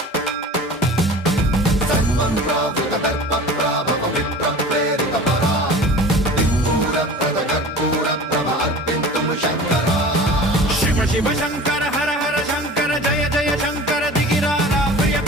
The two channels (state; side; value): normal; both; correlation 0.39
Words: సన్మన్రావృత దర్ప ప్రాభవ విప్ర ప్రేరిత పరా దిక్పూర ప్రద కర్పూర ప్రభ అర్పింతుము శంకర శివ శివ శంకర హర హర శంకర జయ జయ శంకర దిగిరారా ప్రియ